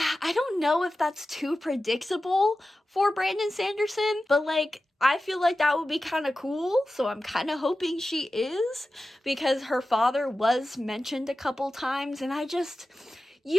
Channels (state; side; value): normal; both; correlation 0.94